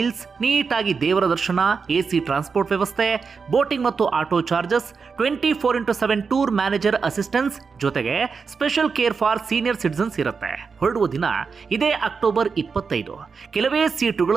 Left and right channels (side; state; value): left; quieter; 5.3 dB